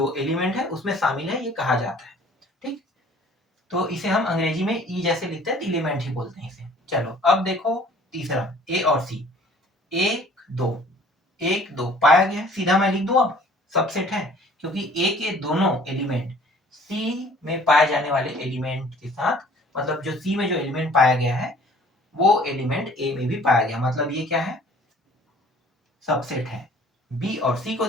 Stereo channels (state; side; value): normal; both; correlation 0.52